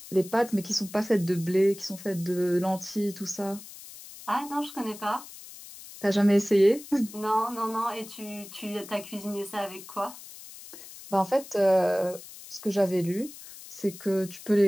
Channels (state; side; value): noise; left; hiss, 16 dB below the sound